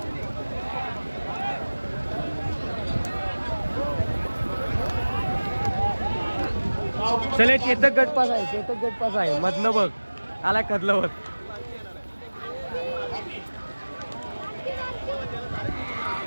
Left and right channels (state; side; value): inverted; both; correlation -1.00